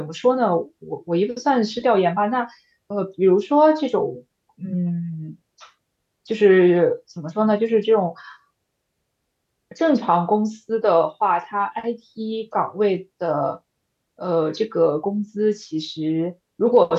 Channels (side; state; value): both; identical; correlation 1.00